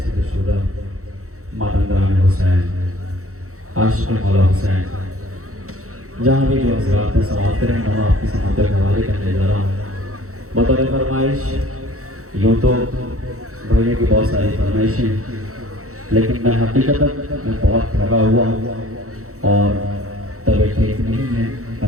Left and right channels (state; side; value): late; left; 0.64 ms